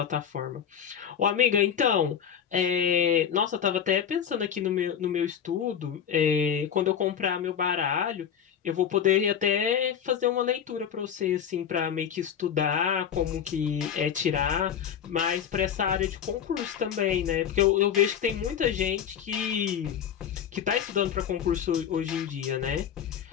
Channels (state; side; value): quieter; right; 8.5 dB